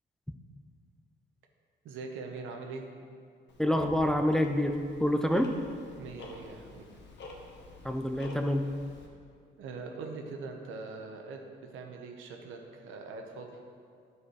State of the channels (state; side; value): normal; both; correlation 0.85